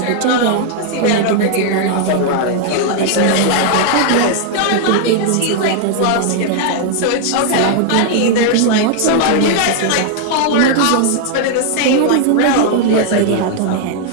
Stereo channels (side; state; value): both; different; correlation 0.00